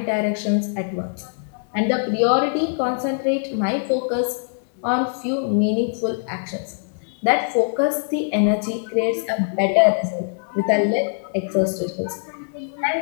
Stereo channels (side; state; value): right; silent; 64 dB below the other